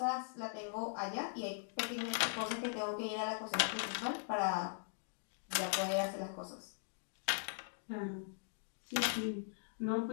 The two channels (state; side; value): silent; right; digital silence